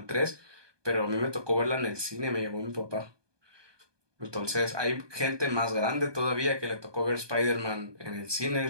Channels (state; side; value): late; left; 1.2 ms